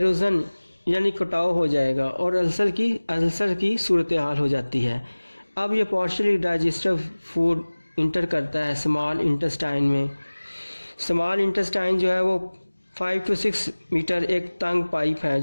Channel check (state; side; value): inverted; both; correlation -1.00